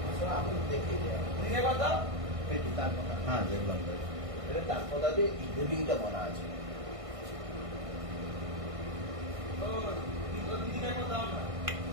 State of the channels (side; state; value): left; late; 1.5 ms